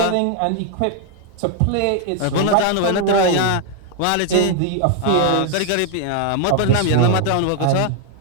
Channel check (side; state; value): both; different; correlation 0.00